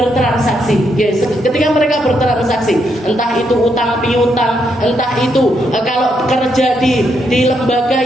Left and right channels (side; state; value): both; normal; correlation 0.78